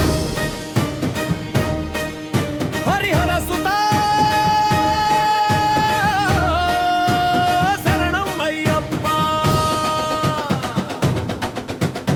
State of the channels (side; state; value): both; identical; correlation 1.00